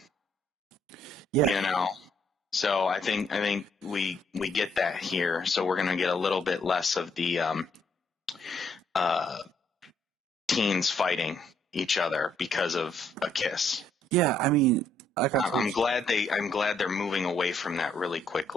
Yeah. So I think we get that here. So we're gonna get a little bit less of the teens fighting each other because of a kiss. Yeah, I'm glad they're moving away from that really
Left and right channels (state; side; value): normal; both; correlation 0.70